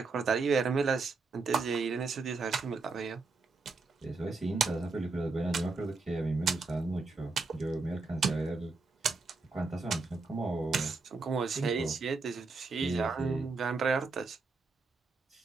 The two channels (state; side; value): quieter; left; 4.0 dB